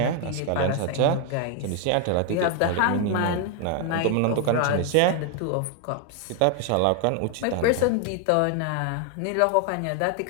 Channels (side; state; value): both; different; correlation 0.01